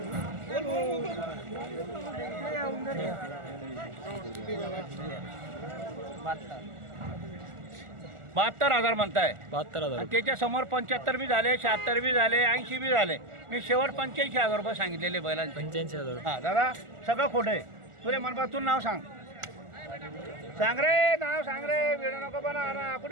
बहात्तर हजार म्हणताय. 72,000. त्याच्या समोर 75 बी झाले, 76 बी झाले, 80 बी झाले. मी शेवट 85,000 रुपये सांगितलेले बैलांचे. 85,000. हा दादा सगळं खोटं आहे. तुला मनपातून नाव सांग. सांग रे नाव सांग रे. वेळ नको बना ना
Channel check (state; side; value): late; left; 1.4 ms